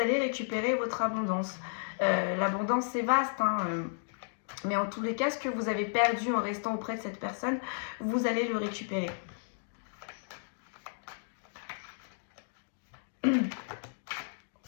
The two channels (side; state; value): right; silent; digital silence